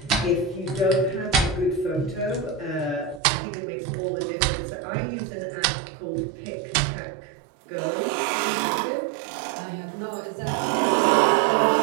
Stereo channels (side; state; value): left; drops out; at 3.2 s